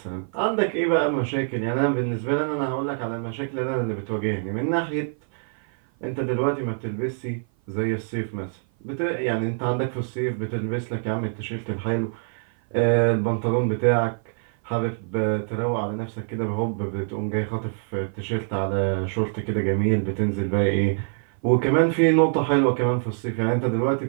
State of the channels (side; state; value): left; silent; 56 dB below the other